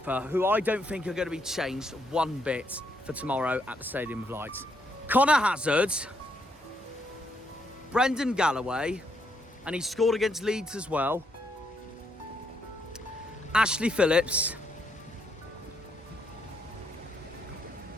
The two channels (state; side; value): normal; both; correlation 0.75